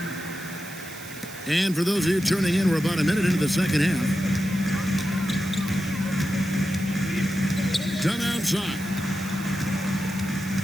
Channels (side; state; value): right; noise; hiss, 15 dB below the sound